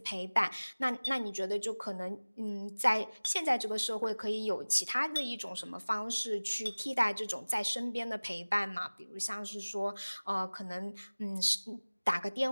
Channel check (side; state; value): both; inverted; correlation -1.00